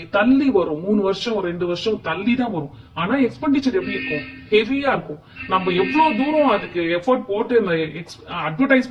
தள்ளி வரும். 3 வருஷம் 2 வருஷம் தள்ளி தான் வரும். ஆனா எக்ஸ்பெண்டிச்சர் எப்படி இருக்கும், ஹெவியா இருக்கும். நம்ம எவ்வளவு தூரம் அதுக்கு எஃபோர்ட் போட்டு இந்த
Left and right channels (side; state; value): both; identical; correlation 1.00